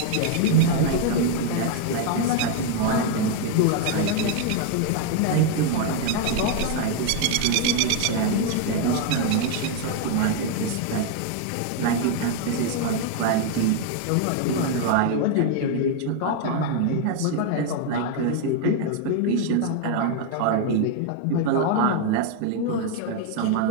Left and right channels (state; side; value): different; both; correlation 0.00